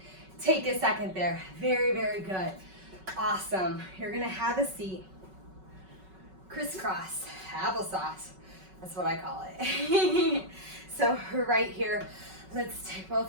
Take a second there. Very, very good. Awesome. You're gonna have a seat. Crisscross, applesauce. That's what I call it. So right here, let's take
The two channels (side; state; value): left; late; 5.3 ms